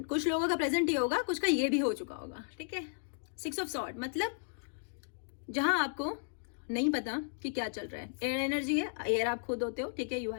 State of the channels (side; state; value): right; silent; digital silence